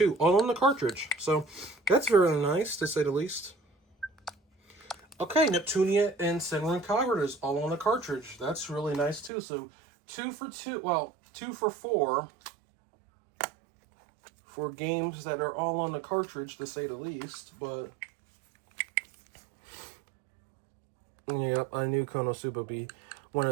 all on the cartridge. So that's very nice, to say the least. Okay, Neptunia and Senran Kagura is all on the cartridge. That's really nice too. So 2 for 2. Well, 2 for 4 for games that are all on the cartridge, to say the least. But yep, I knew Konosuba would be one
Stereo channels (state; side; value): drops out; left; at 9.3 s